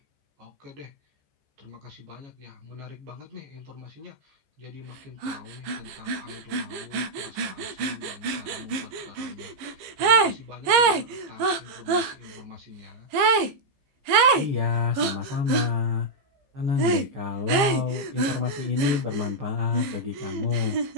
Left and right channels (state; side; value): late; left; 14 ms